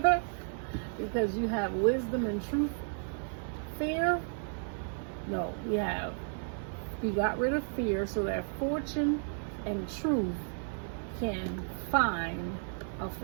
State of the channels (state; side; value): silent; left; digital silence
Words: Because you have wisdom and truth. Fear, no, we got rid of fear so that fortune and truth can find a